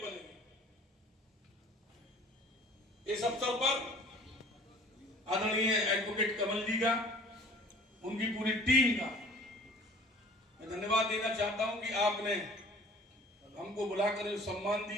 इस अवसर पर आदरणीय एडवोकेट कमल जी का, उनकी पूरी टीम का मैं धन्यवाद देना चाहता हूं कि आपने हमको बुलाकर जो सम्मान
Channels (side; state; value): both; normal; correlation 0.48